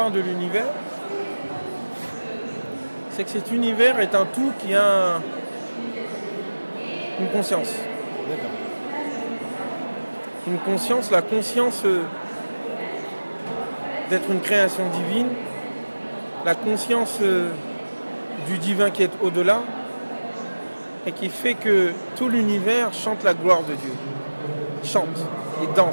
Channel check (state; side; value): inverted; both; correlation -1.00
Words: de l'univers, c'est que cet univers est un tout qui a une conscience. Une conscience, la conscience d'être une création divine, la conscience du divin qui est au-delà, et qui fait que tout l'univers chante la gloire de Dieu. Chante, ils